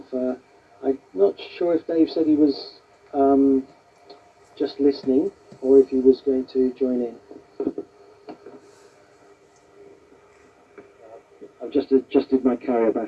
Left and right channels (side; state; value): both; identical; correlation 1.00